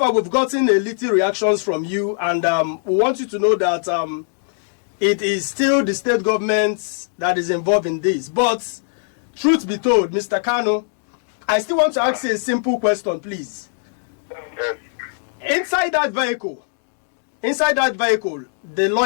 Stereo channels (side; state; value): right; silent; digital silence